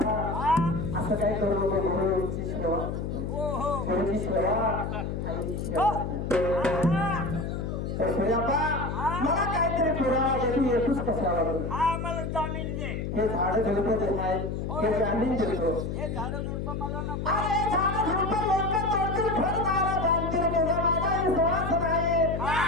हा असं काय करू नको गुरुची सेवा हो हो गुरुची सेवा आईची सेवा हा तर सूर्यापा मला काहीतरी पुरावा दे तू येतोस कशाला बरं? हा मला जामीन दे हे झाडं झुडपं जे आहेत हे जामीन देतो हे झाडं झुडपं मला नको अरे झाडं झुडपं लोकं तोडतील फळदारा बांधतील तुझा माझा विश्वास नाही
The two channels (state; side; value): noise; left; hum, 3 dB below the sound